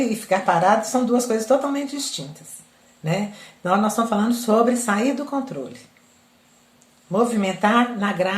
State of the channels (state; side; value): identical; both; correlation 1.00